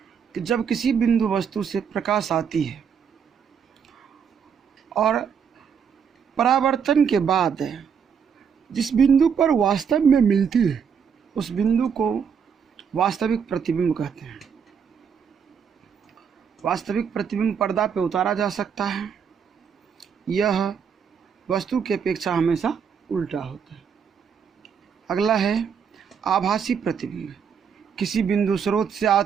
कि जब किसी बिंदु वस्तु से प्रकाश आती है और परावर्तन के बाद जिस बिंदु पर वास्तव में मिलती है उस बिंदु को वास्तविक प्रतिबिंब कहते हैं। वास्तविक प्रतिबिंब पर्दा पे उतारा जा सकता है। यह वस्तु की अपेक्षा हमेशा उल्टा होता है। अगला है आभासी प्रतिबिंब। किसी बिंदु स्रोत से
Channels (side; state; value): left; quieter; 7.0 dB